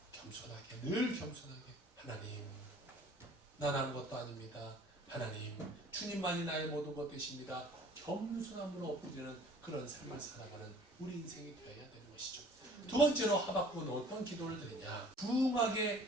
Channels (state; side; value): normal; both; correlation 0.51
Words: 겸손하게, 늘 겸손하게, 하나님 난 아무것도 아닙니다. 하나님 주님만이 나의 모든 것 되십니다. 겸손함으로 엎드리는 그런 삶을 살아가는 우리 인생이 되어야 되는 것이죠. 두 번째로 하박국은 어떤 기도를 드리냐, 부응하게